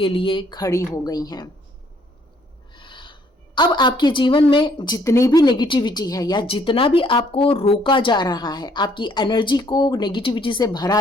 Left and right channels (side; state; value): both; normal; correlation 0.65